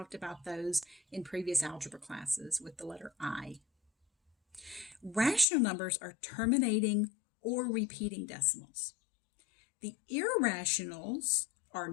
about those in previous algebra classes with the letter I. Rational numbers are terminating or repeating decimals. The irrationals are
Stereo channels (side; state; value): right; drops out; at 5.5 s